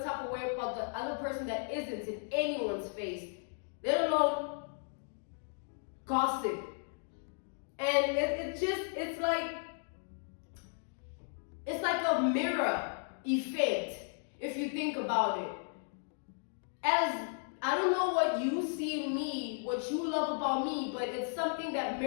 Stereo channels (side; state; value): right; silent; 54 dB below the other